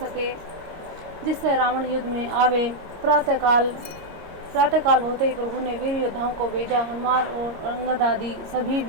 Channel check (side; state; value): left; late; 25 ms